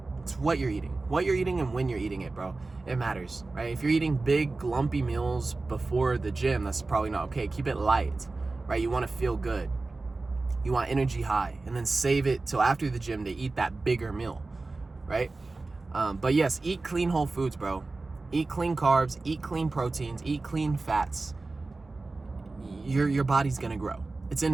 It's what you're eating. What you're eating and when you're eating it, bro. It matters, right? If you're eating big, lumpy meals before the gym, that's probably not okay. Keep it light, right? You want to feel good. You want energy high, and then save it till after the gym to eat that bigger meal, right? But yes, eat clean whole foods, bro. Eat clean carbs, eat clean proteins, eat clean fats. Your body's gonna grow. It's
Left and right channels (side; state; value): left; quieter; 3.5 dB